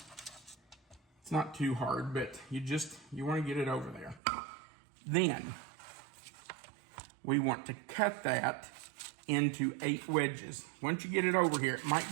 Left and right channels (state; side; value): drops out; left; at 4.2 s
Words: It's not too hard, but you want to get it over there. Then we want to cut that into 8 wedges. Once you get it over here, it might